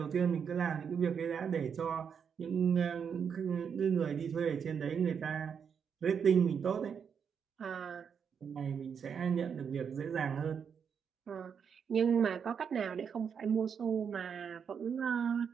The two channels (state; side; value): quieter; left; 7.0 dB